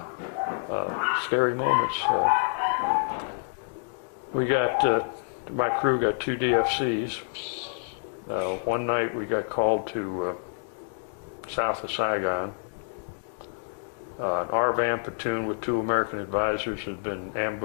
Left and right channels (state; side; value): silent; right; 60 dB below the other